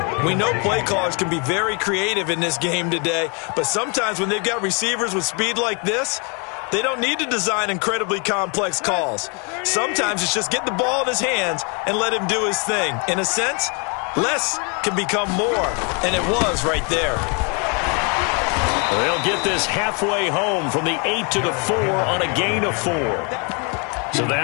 We know play callers can be very creative in this game today, but sometimes when they've got receivers with speed like this, they don't need to design incredibly complex calls. Sometimes it's just get the ball in his hands and let him do his thing. In a sense, less can become more, and it was right there. They'll get this halfway home from the 8 to the 4 on a gain of 4. So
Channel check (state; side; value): quieter; right; 35.0 dB